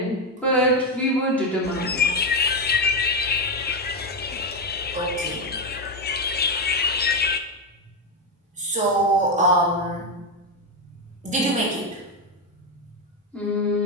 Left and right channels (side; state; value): both; normal; correlation 0.09